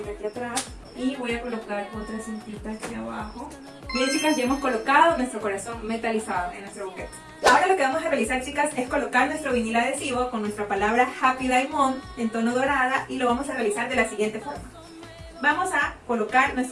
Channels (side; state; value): both; identical; correlation 1.00